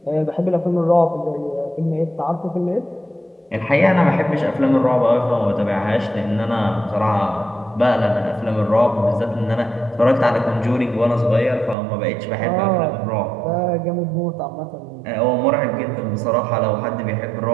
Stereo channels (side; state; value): left; drops out; at 11.8 s